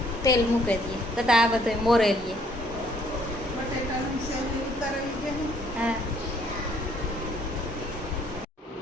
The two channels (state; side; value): normal; both; correlation 0.64